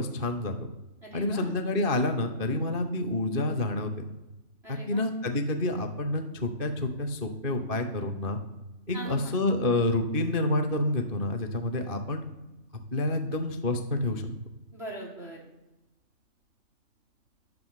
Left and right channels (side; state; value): left; late; 2.6 ms